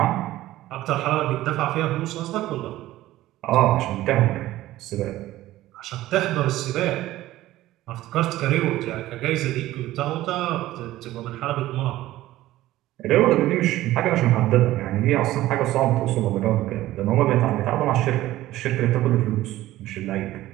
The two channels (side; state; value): left; quieter; 15.6 dB